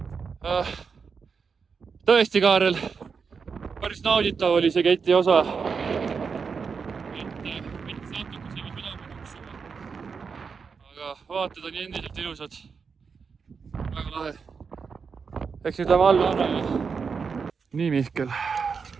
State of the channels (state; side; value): quieter; left; 5.6 dB